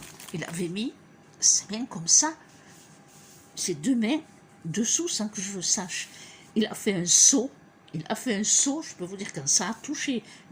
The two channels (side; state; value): both; identical; correlation 1.00